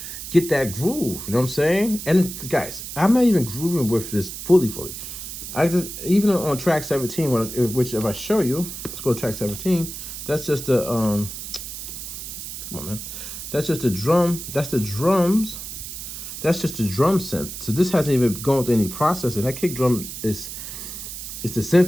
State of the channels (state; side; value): noise; right; hiss, 9 dB below the sound